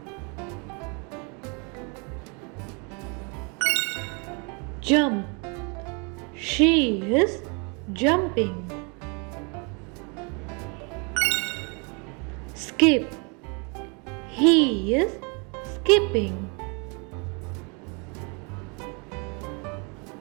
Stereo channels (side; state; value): left; quieter; 33.2 dB